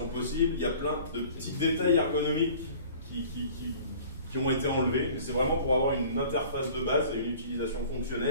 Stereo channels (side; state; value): both; inverted; correlation -0.47